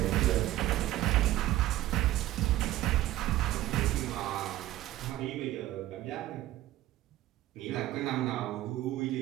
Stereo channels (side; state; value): left; quieter; 15.0 dB